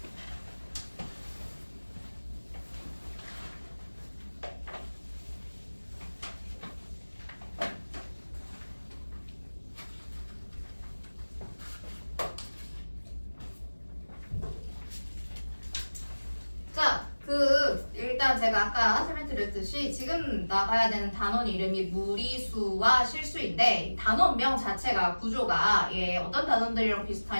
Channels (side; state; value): both; inverted; correlation -1.00